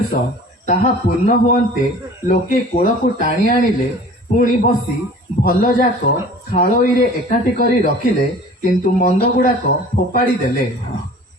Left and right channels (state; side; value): normal; both; correlation 0.45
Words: ताहा पूर्ण हुअन्ते लोके कूल को टाणी आनिले, ପୁଣି ବସି ଭଲ ଯାକ ଖାଳୋଇରେ ଏକାଠି କରି ରଖିଲେ, କିନ୍ତୁ ମନ୍ଦ ଗୁଡ଼ାକ ଫୋପାଡ଼ି ଦେଲେ।